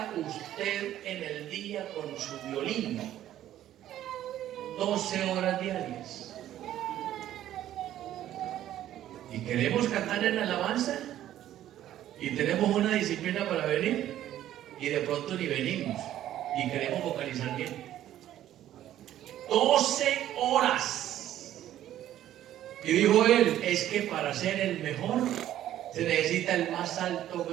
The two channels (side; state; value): left; quieter; 12.4 dB